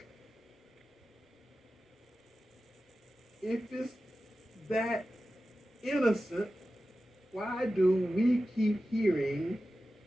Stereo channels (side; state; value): both; normal; correlation 0.94